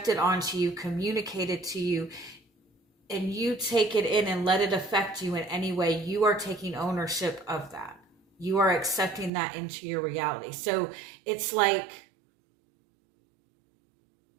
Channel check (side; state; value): left; drops out; at 9.3 s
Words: onto you, communicated to you, and you take it in and let it affect you in any way, you are taking ownership of that. You are accepting that into your reality. So it's like,